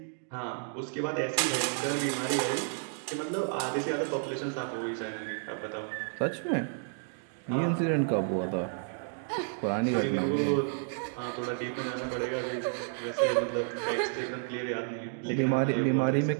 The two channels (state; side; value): silent; left; 57 dB below the other